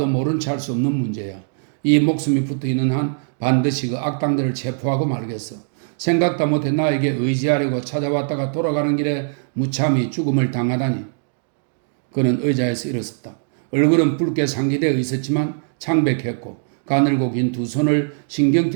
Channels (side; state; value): left; silent; digital silence